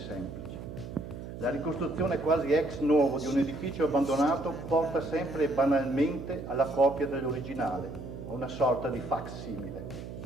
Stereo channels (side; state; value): right; noise; hum, 10 dB below the sound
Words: La ricostruzione quasi ex novo di un edificio abbandonato porta sempre e banalmente alla copia dell'originale, a una sorta di facsimile.